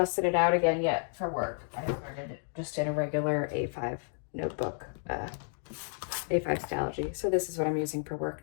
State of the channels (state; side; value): silent; right; 57 dB below the other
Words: it out again yet for work. I started it just in a regular A5 notebook, A5 Stalogy. So this is what I'm using for